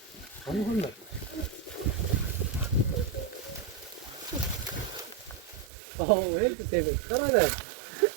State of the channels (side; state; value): left; drops out; at 5.7 s